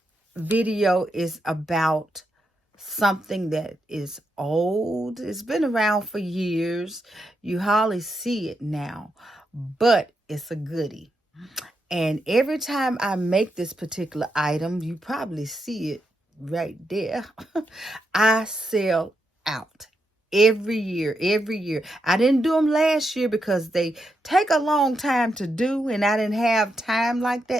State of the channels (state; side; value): normal; both; correlation 0.83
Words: video is about something that is old. It's been around for years. You hardly see it now, but it's a goodie. And every time I make this particular item, you probably see it right there. I sell out every year. I didn't do them last year because they take a long time to do, and I didn't have time like